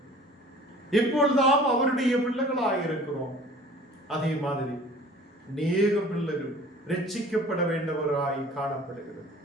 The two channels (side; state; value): both; normal; correlation 0.47